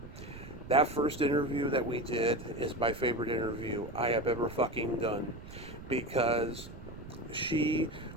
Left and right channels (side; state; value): right; noise; rumble, 13 dB below the sound